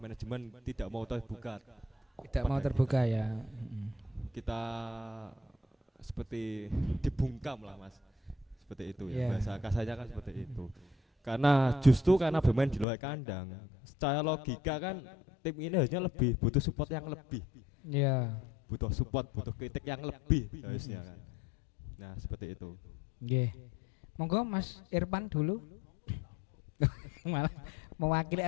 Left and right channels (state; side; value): drops out; right; at 12.9 s